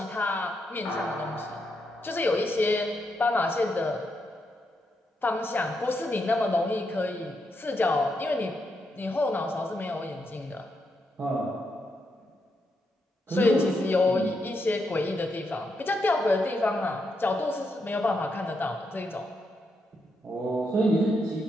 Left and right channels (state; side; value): normal; both; correlation 0.81